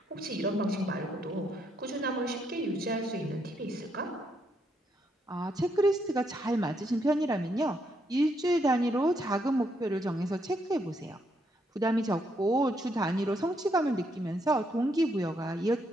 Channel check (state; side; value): normal; both; correlation 0.76